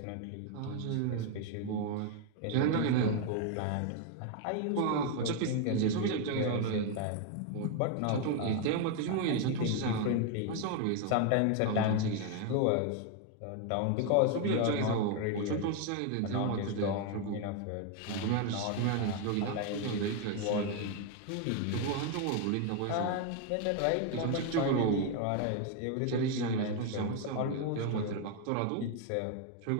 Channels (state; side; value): different; both; correlation 0.01